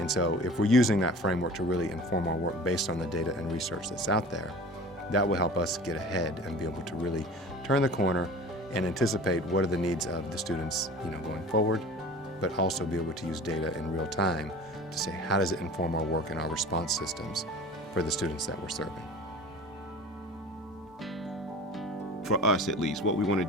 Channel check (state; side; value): normal; both; correlation 0.41